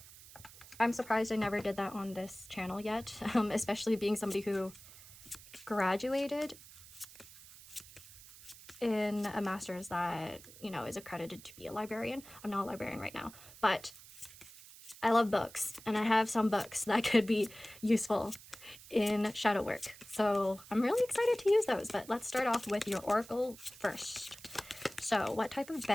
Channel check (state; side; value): noise; right; hiss, 19 dB below the sound